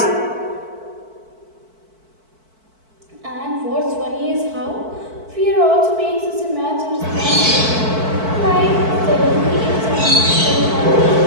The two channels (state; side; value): late; left; 4.5 ms